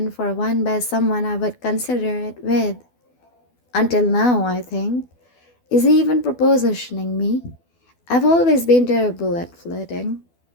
for one by someone I would consider it with. Until now, I think. Is he even propositioning me? I've always been terrible at flirting.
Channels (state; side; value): late; right; 12 ms